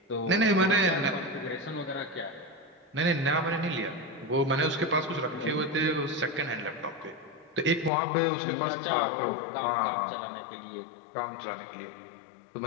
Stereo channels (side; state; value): right; drops out; at 7.9 s